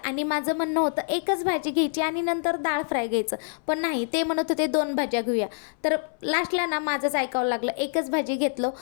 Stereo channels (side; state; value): right; silent; 61 dB below the other